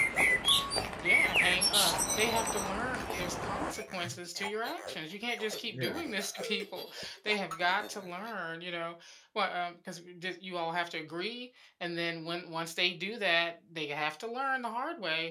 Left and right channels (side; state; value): both; identical; correlation 1.00